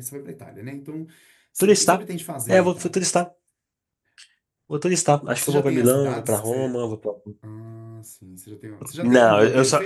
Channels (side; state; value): both; identical; correlation 1.00